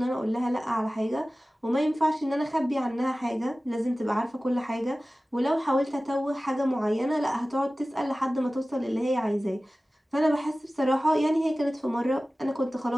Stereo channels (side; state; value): both; normal; correlation 0.97